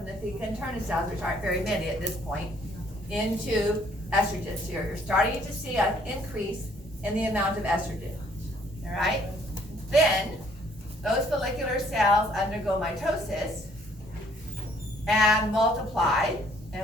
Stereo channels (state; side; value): normal; both; correlation 0.63